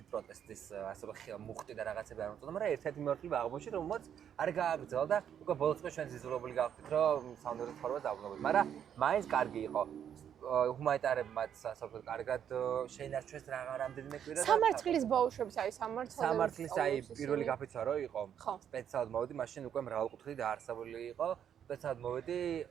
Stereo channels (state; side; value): quieter; left; 9.0 dB